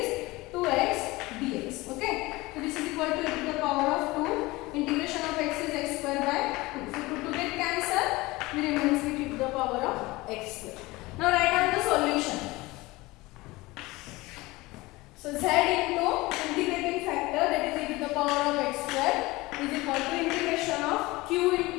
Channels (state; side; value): quieter; right; 21.1 dB